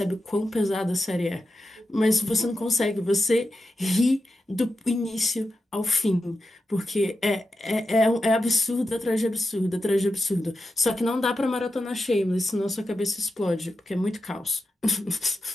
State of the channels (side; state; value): both; normal; correlation 0.90